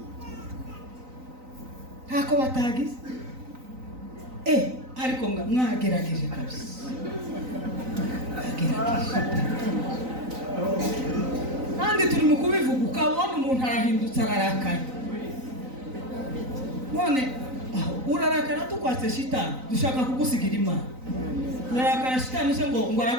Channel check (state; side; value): late; left; 3.9 ms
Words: Ntako batagize. Ariko mwagerageje kabisa. Kandi turi mu kubivuga ukabona umuntu arahindutse ararakaye. None urarakara tukwatse shitani dushaka kugusigira Imana. Urarakara shitani se ngo